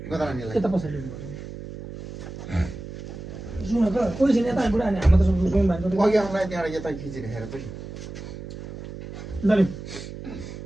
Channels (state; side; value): noise; right; hum, 11 dB below the sound